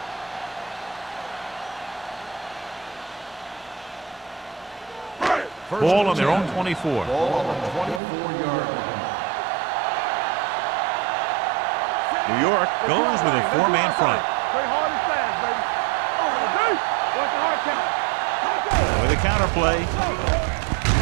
Ball on their own 24. Ball on the 24-yard line. New York goes with a 4-man front. Play hard and fast, baby. Watch the hard count. With a counter play.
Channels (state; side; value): drops out; left; at 8.0 s